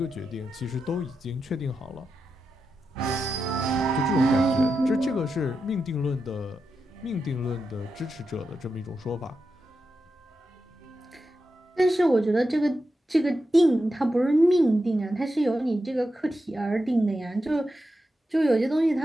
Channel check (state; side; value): normal; both; correlation 0.88